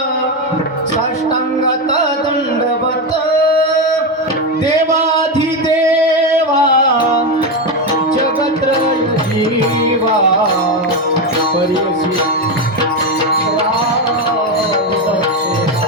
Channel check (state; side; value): normal; both; correlation 0.11